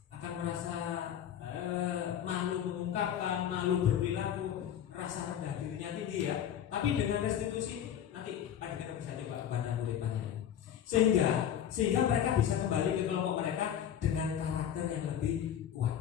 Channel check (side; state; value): right; quieter; 9.8 dB